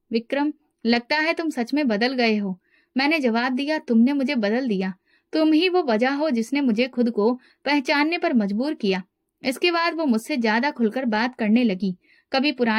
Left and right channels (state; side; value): identical; both; correlation 1.00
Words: विक्रम, लगता है तुम सच में बदल गए हो। मैंने जवाब दिया, तुमने मुझे बदल दिया। तुम ही वो वजह हो जिसने मुझे खुद को पहचानने पर मजबूर किया। इसके बाद वो मुझसे ज्यादा खुलकर बात करने लगी। कभी